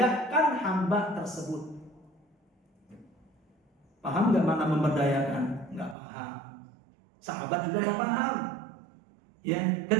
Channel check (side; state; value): left; drops out; at 6.0 s